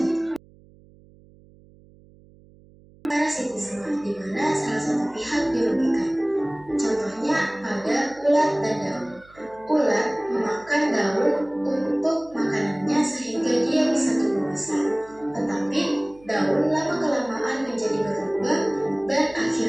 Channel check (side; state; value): right; noise; hum, 26 dB below the sound